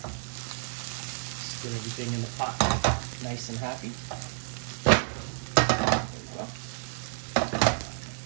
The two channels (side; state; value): left; silent; digital silence